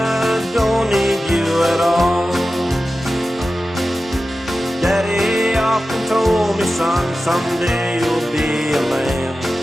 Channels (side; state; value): both; normal; correlation 0.94